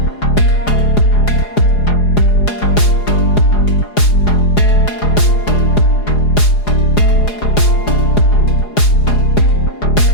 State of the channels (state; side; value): late; right; 4.8 ms